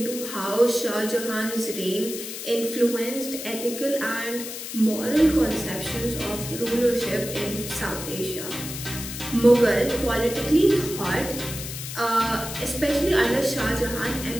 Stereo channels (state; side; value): noise; left; hiss, 8 dB below the sound